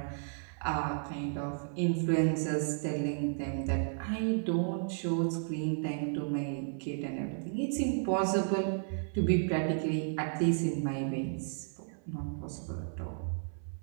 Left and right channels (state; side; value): silent; left; 56 dB below the other